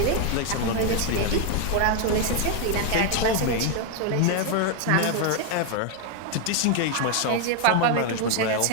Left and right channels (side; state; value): both; different; correlation 0.01